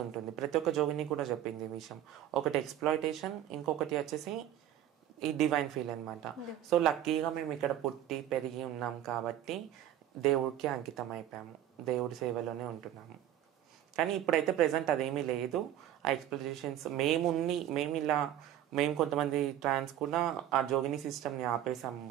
ఉంటుంది. ప్రతి ఒక్క జోగిని కూడా చెప్పింది ఈ విషయం. ఒకటి ఎక్స్ప్లాయిటేషన్, ఇంకొకటి వచ్చేసి ఈ డివైన్ ఫీల్ అనమాట. సో లక్కీగా మేము ఇక్కడ పుట్టి పెరిగి ఉన్నాం కాబట్టి దేవుడికి అంకితం అయిపోయాము, దేవుడి సేవలోనే ఉంటున్నాము. కానీ ఇప్పుడైతే ప్రెసెంట్ అదేమీ లేదు. ఆ ఎక్స్పెక్టేషన్స్ మేము కొంతమంది ట్రాన్స్ కూడా ఆ జోగిని సిస్టమ్ని ఆపేసాము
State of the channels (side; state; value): left; quieter; 11.7 dB